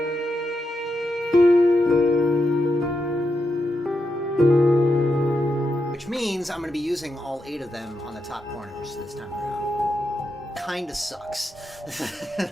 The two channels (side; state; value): both; normal; correlation 0.85